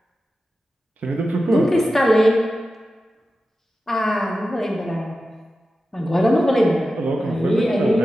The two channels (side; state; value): both; normal; correlation 0.93